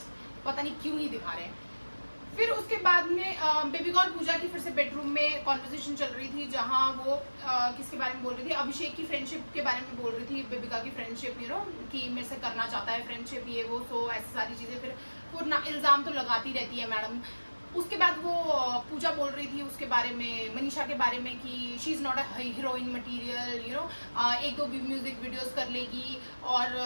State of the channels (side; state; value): both; inverted; correlation -1.00